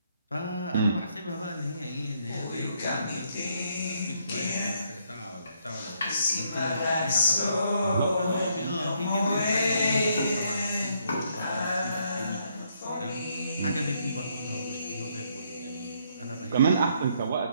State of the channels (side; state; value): both; inverted; correlation -0.72